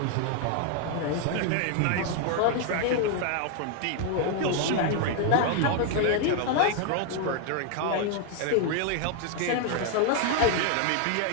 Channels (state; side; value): different; both; correlation 0.00